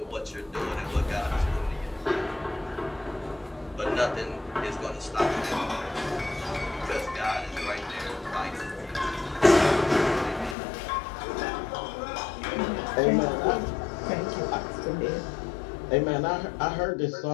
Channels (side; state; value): right; drops out; at 10.6 s